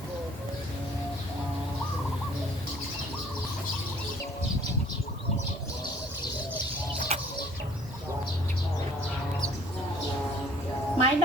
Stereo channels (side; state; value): both; normal; correlation 0.54